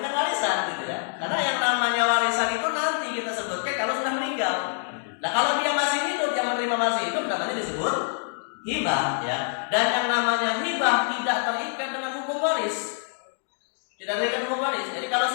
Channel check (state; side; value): silent; right; digital silence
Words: warisan gitu ya. Karena yang namanya warisan itu nanti kita sebutkan kalau sudah meninggal. Nah kalau dia masih hidup, yang menerima masih hidup namanya disebut hibah ya. Dan yang namanya hibah tidak terikat dengan hukum waris. Tidak terikat hukum waris. Jadi kalau